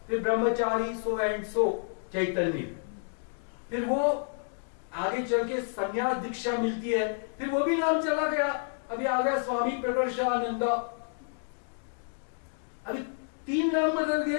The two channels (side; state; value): right; silent; digital silence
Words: फिर ब्रह्मचारी सो एंड सो चैतन्य, फिर वो आगे चल के संन्यास दीक्षा मिलती है, फिर वो भी नाम चला गया, अभी आ गया स्वामी प्रकर्षानंद। अभी 3 नाम बदल